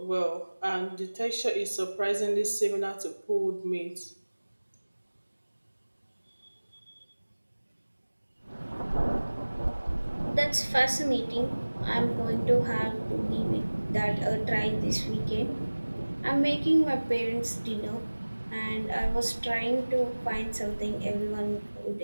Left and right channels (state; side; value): inverted; both; correlation -1.00